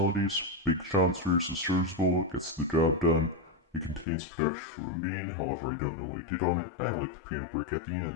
Big Sean's verse is serviceable, gets the job done. It contains production from Aminé, however I don't know what he did on it. I like the piano break at the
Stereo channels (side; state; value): right; drops out; at 4.0 s